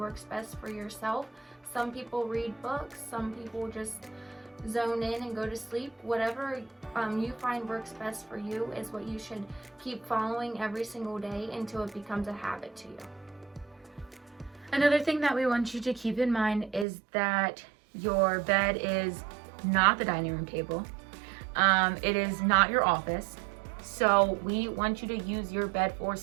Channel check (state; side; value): drops out; left; at 16.9 s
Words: best for yourself. Some people read books, some people just zone in and go to sleep. Whatever you find works best for you is what you should keep following every single day until it becomes a habit to you. Another thing that we want you to keep in mind is that your bed is not the dining room table. It is not your office. So we want you to use your bed for